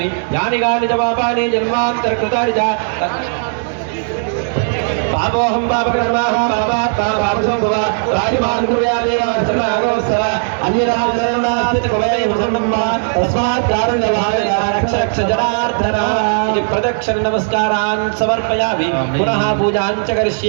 యాని గాని జవాబాని జన్మాంతర కృతాని చ పాపోహం పాపకర్మాహం పాపాత్మా రాజమానుయాదేవర ప్రదక్షిణ నమస్కారాన్ సమర్పయామి పునః పూజాం చ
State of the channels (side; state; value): left; silent; digital silence